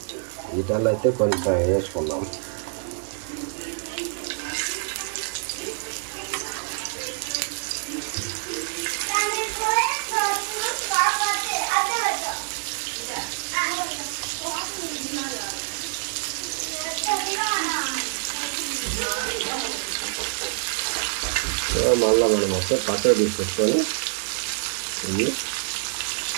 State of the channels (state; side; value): silent; left; digital silence